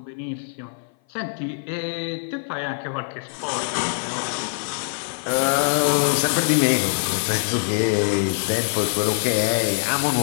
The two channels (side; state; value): right; silent; 57 dB below the other